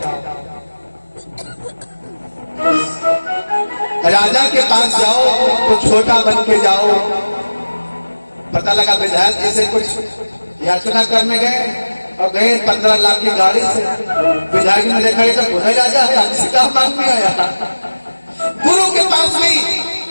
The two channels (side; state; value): both; inverted; correlation -1.00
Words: राजा के पास जाओ तो छोटा बन के जाओ। पता लगा विधायक जी से कुछ याचना करने गए और गए 15 लाख की गाड़ी से। विधायक ने देखा ये तो खुदा राजा है, हमसे क्या मांग में आया। गुरु के पास भी